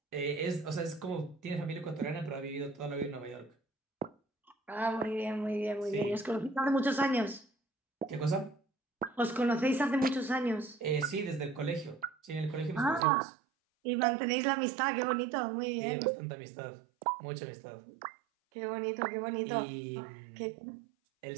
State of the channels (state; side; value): drops out; left; at 13.0 s